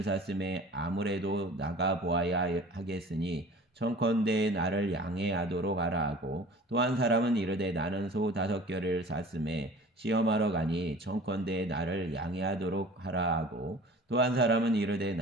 샀음에 아무래도 나가 보아야 하겠으니 청컨대 나를 양해하도록 하라 하고 또 한 사람은 이르되 나는 소 5결을 샀음에 시험하러 가니 청컨대 나를 양해하도록 하라 하고 또 한 사람은 이르되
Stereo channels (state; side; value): normal; both; correlation 0.44